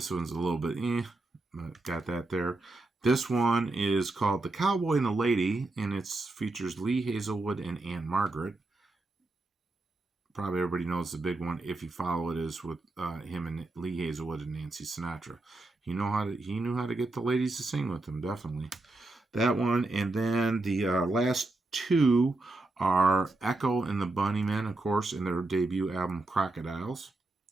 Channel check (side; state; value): left; quieter; 3.0 dB